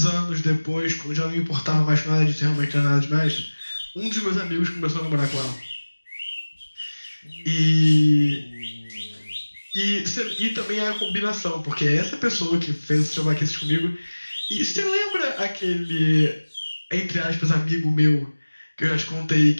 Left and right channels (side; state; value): both; inverted; correlation -1.00